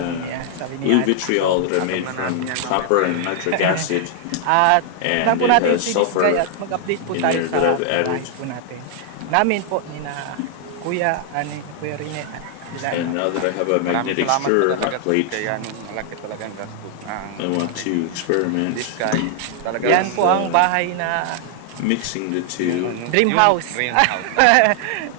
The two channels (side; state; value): both; different; correlation 0.00